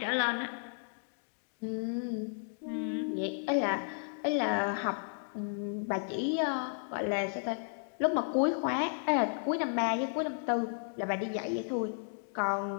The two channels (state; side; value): silent; right; digital silence